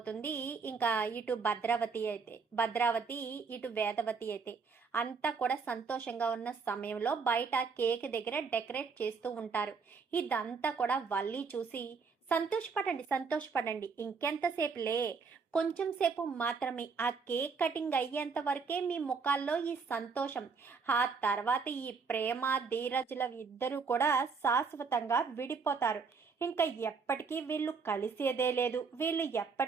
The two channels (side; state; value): left; quieter; 5.2 dB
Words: ఇంకా ఇటు భద్రావతి ఇటు వేదవతి అయితే అంతా కూడా సంతోషంగా ఉన్న సమయంలో బయట కేక్ దగ్గర డెకరేట్ చేస్తూ ఉంటారు. ఇదంతా కూడా వల్లి చూసి సంతోషపడండి, ఇంకెంతసేపులే, కొంచెం సేపు మాత్రమే, ఆ కేక్ కటింగ్ అయ్యేంత వరకే మీ ముఖాల్లో ఈ సంతోషం, ఆ తర్వాత ఈ ప్రేమ ధీరజుల ఇద్దరు కూడా శాశ్వతంగా విడిపోతారు. ఇంకా ఎప్పటికీ వీళ్ళు కలిసేదే లేదు, వీళ్ళు